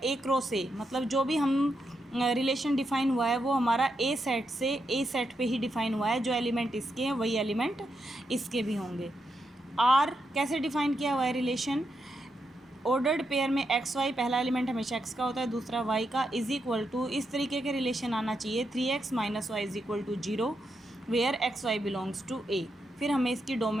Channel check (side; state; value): both; normal; correlation 0.83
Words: ए क्रॉस ए, मतलब जो भी हम रिलेशन डिफाइन हुआ है वो हमारा ए सेट से ए सेट पे ही डिफाइन हुआ है। जो एलिमेंट इसके हैं वही एलिमेंट इसके भी होंगे। आर कैसे डिफाइन किया हुआ है रिलेशन? ऑर्डर्ड पेयर में एक्स वाई, पहला एलिमेंट हमेशा एक्स का होता है, दूसरा वाई का, इज इक्वल टू इस तरीके के रिलेशन आना चाहिए 3x minus y is equal to 0 where x y belongs to A. फिर हमें इसकी